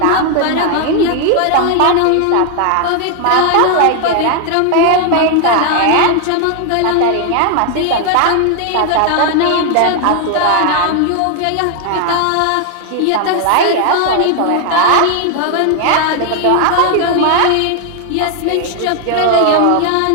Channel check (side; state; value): both; different; correlation 0.00